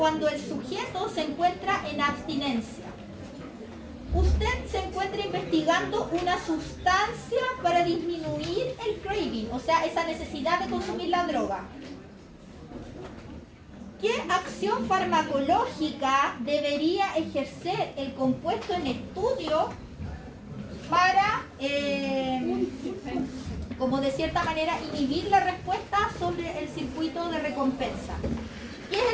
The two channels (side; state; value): both; identical; correlation 1.00